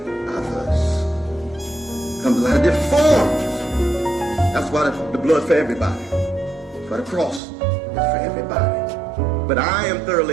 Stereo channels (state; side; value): drops out; left; at 7.4 s